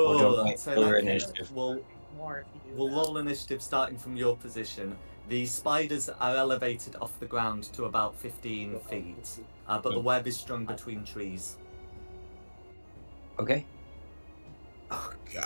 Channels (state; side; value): inverted; both; correlation -1.00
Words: Cool. want to wait So in till that your case, initiative? More if you do we'll that. roll initiative starting from your position. The spiders are elevated off the ground to about 15 feet, but the web is strung between trees. Okay. Oh